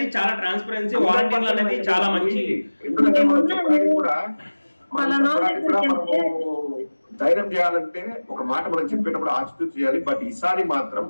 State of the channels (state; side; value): inverted; both; correlation -1.00